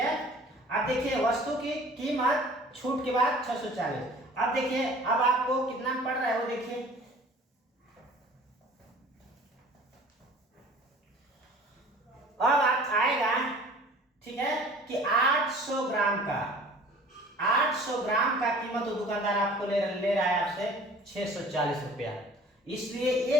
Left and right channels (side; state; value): both; normal; correlation 0.47